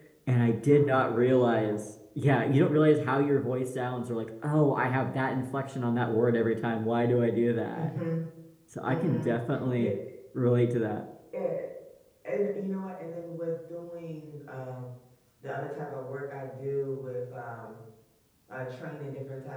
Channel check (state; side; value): identical; both; correlation 1.00